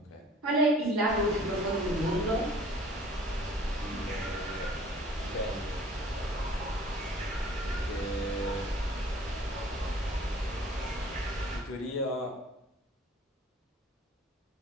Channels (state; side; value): normal; both; correlation 0.51